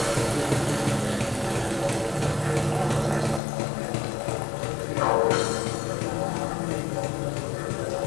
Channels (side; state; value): right; drops out; at 3.4 s